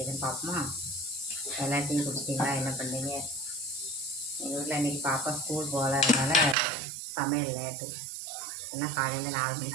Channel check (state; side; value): drops out; left; at 6.6 s